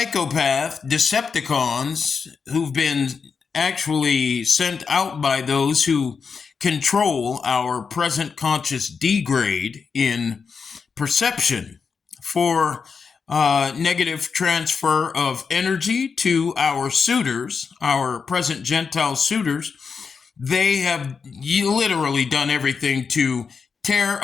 Decepticons who've been actually sent out by those who control our present conscious degrade in perception for negative transfer of energy to our suitors, our present Gentile suitors. They have literally done everything to tear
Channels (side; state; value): right; quieter; 5.6 dB